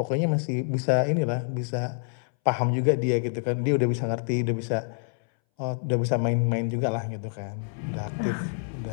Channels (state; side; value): silent; right; 60 dB below the other